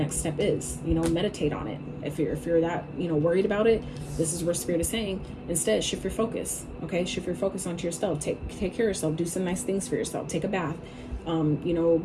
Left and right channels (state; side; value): identical; both; correlation 1.00